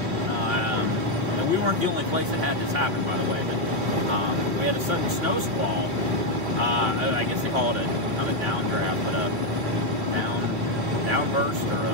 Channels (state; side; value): late; left; 3.3 ms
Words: We weren't the only place that had this happen, by the way, but we had a sudden snow squall. I guess they call it not a downdraft, but a downburst, or